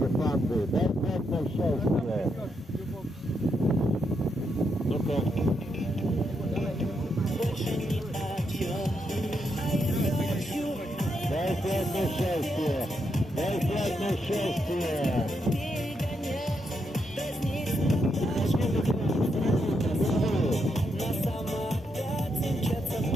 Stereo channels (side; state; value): both; normal; correlation 0.81